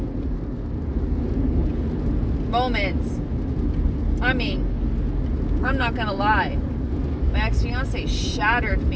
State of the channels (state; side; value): identical; both; correlation 1.00